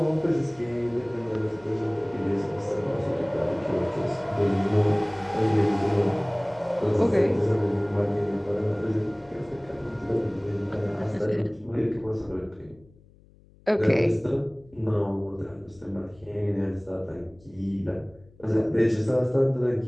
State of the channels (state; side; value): noise; left; hum, 27 dB below the sound